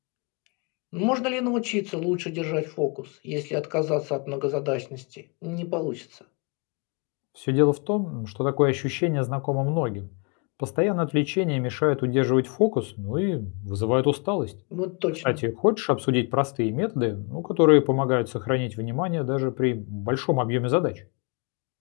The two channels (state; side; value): quieter; right; 34.1 dB